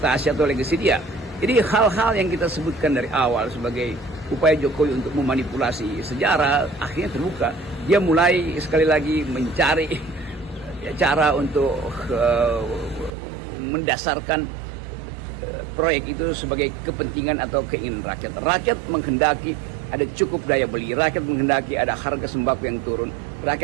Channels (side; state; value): left; drops out; at 13.2 s